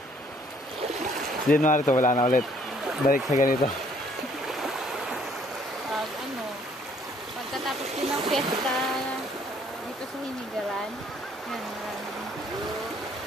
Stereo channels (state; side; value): normal; both; correlation 0.62